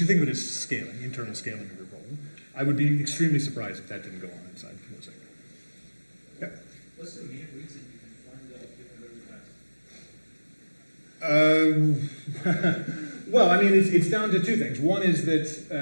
think of it as scaling, internal scaling of your problem. I would be extremely surprised if that didn't go on inside Mosaic. Yeah. What's the main reason you can find out very fast? Well, I mean, it's down to two things. One is that,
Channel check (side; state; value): both; inverted; correlation -1.00